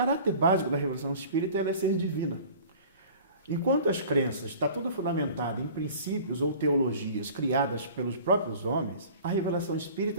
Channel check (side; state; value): both; inverted; correlation -0.44